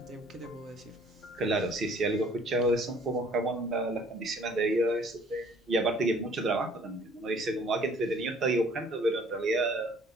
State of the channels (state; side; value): normal; both; correlation 0.56